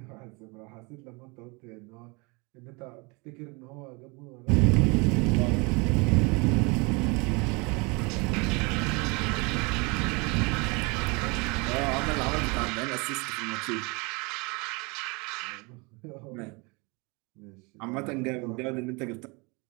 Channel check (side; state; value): left; quieter; 28.7 dB